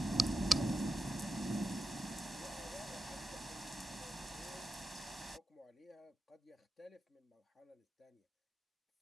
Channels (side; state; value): both; normal; correlation 0.89